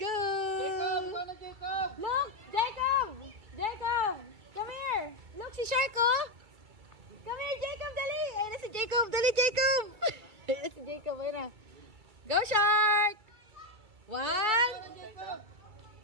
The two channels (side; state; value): left; late; 2.3 ms